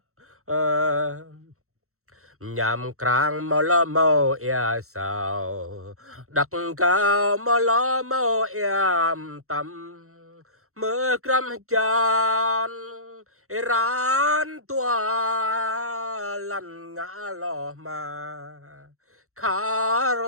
nhằm krang mò lo mò ea sao đặc cao mò lo mò em tâm mơ cram chan ran tua lăn ngã lo mà khar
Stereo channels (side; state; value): left; late; 0.63 ms